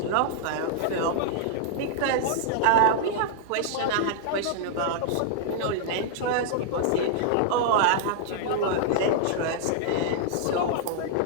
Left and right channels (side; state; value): both; different; correlation -0.01